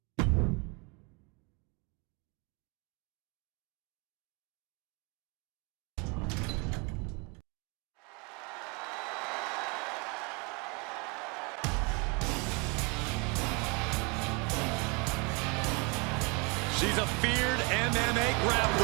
She's a feared MMA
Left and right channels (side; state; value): left; quieter; 30.9 dB